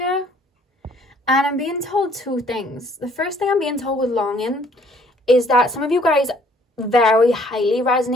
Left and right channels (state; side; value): normal; both; correlation 0.60